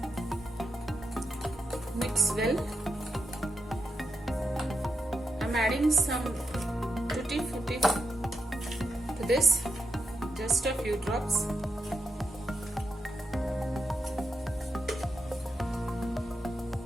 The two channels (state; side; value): normal; both; correlation 0.86